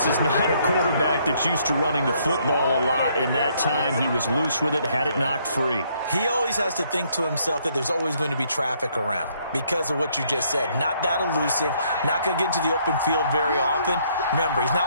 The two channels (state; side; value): inverted; both; correlation -0.68